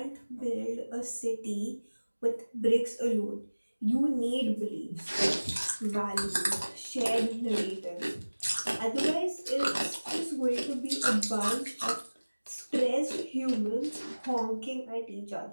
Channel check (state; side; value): inverted; both; correlation -1.00